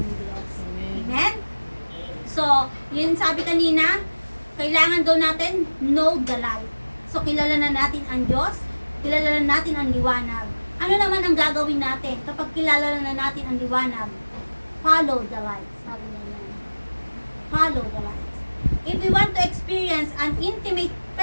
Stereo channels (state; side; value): inverted; both; correlation -1.00